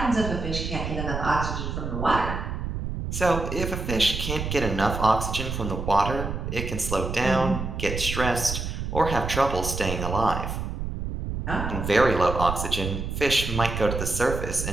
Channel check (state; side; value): noise; right; rumble, 4 dB below the sound